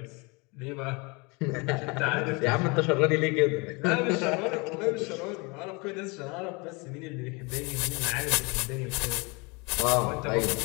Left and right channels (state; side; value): quieter; right; 28.3 dB